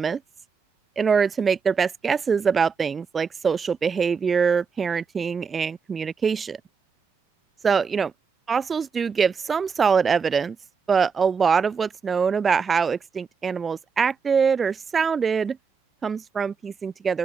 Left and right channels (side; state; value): left; quieter; 5.8 dB